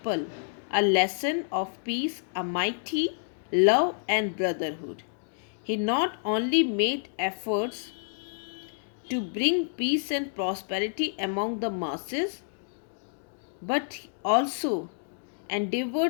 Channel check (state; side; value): silent; right; digital silence